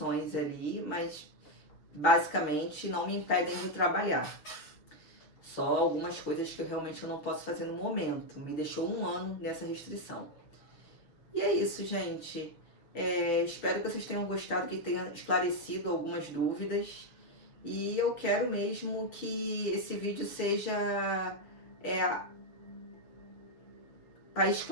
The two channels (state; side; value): late; right; 6.8 ms